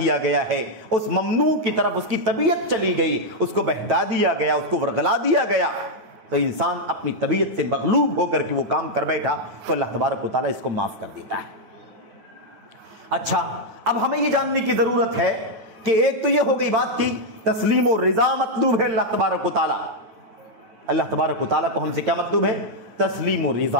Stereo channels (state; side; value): late; left; 9.0 ms